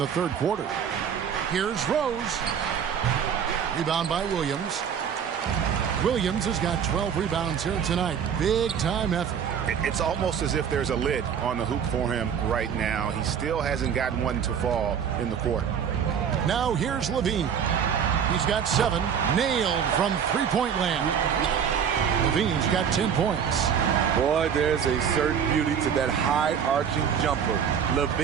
third quarter. Here's Rose. Rebound by Williams. Williams has got 12 rebounds here tonight. Big time effort. It's almost as if there's a lid on the hoop for him right now. He still hasn't gotten one to fall in the court. Now here's Levine. He's got 7. Nailed from three-point land. Levine's got 10 points. Boy, there's a certain beauty to that high-arching jumper.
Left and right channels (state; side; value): quieter; left; 7.8 dB